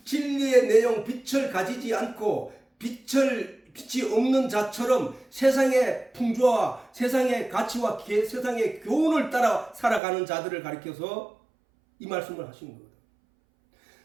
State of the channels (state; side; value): drops out; left; at 10.0 s